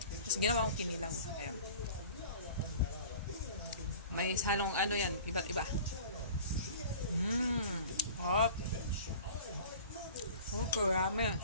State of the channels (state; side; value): inverted; both; correlation -0.43